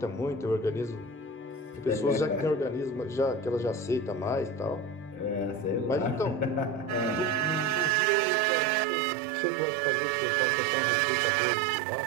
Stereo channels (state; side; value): drops out; left; at 8.0 s